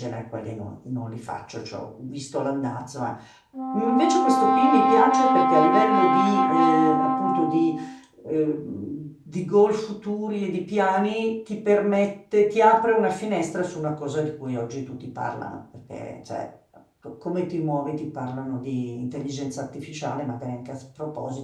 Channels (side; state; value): both; identical; correlation 1.00